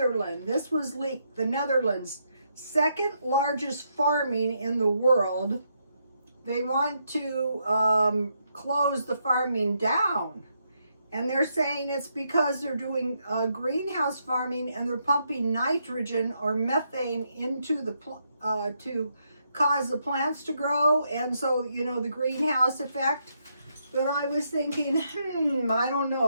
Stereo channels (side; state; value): both; inverted; correlation -0.78